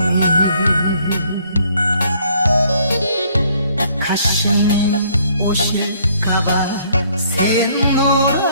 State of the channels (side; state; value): both; inverted; correlation -0.64